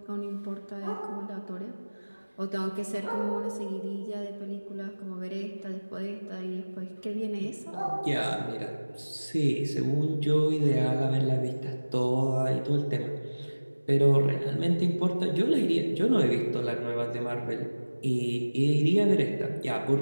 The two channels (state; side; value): inverted; both; correlation -1.00